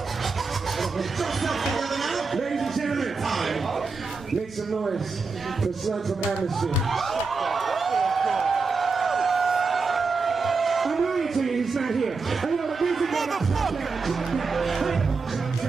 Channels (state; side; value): quieter; left; 4.4 dB